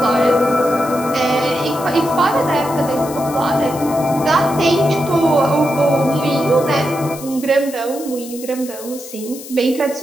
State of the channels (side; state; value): left; noise; hiss, 14 dB below the sound